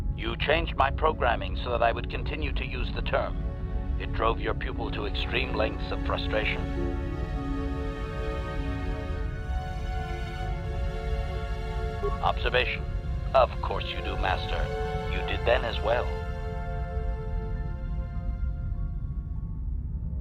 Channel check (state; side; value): identical; both; correlation 1.00